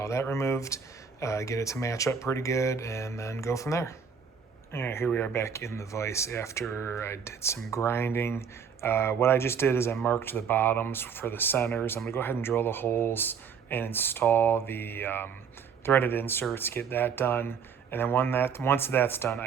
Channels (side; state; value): left; quieter; 6.6 dB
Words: that removed, get it to match up pretty good, and then go from there. All right, here we are back in the vise after I did some grinding. What I just did is I marked the bottoms for the centers. I'm going to go ahead and drill the holes and install the threaded inserts, get that done. And then once that's done,